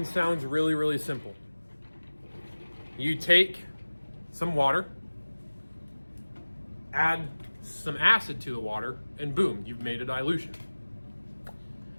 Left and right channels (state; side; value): inverted; both; correlation -1.00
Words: sounds really, really simple. You take some water, add some acid to the water, and boom, you've made a dilution.